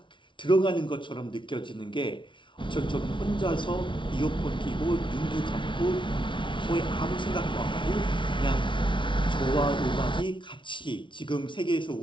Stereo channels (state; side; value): late; right; 0.24 ms